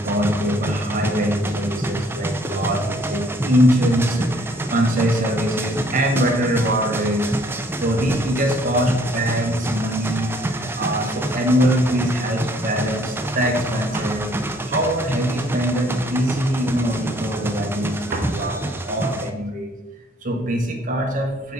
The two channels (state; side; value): normal; both; correlation 0.62